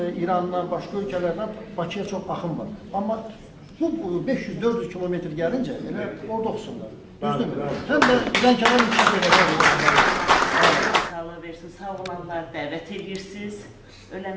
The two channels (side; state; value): both; identical; correlation 1.00